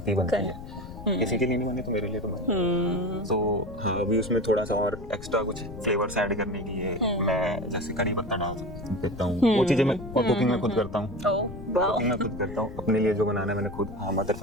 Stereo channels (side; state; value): left; noise; rumble, 12 dB below the sound